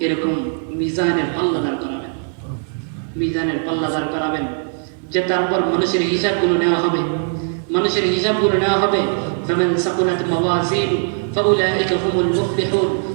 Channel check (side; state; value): left; silent; digital silence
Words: এরকম মিজানের পাল্লা দাঁড় করাবেন, মিজানের পাল্লা দাঁড় করাবেন, যে তারপর মানুষের হিসাবগুলো নেওয়া হবে, মানুষের হিসাবগুলো নেওয়া হবে। ফামান সাকুলাত মাওয়াজিনু ফাউলাইকা হুমুল মুফলিহুন